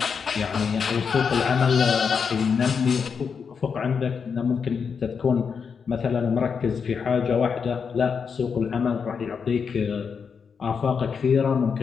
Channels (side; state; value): right; quieter; 6.1 dB